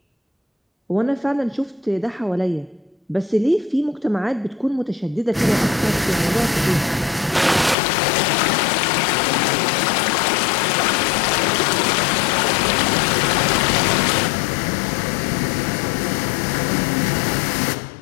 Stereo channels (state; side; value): drops out; right; at 7.8 s